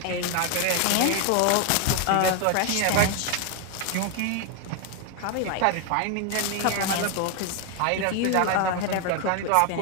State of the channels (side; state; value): both; different; correlation 0.01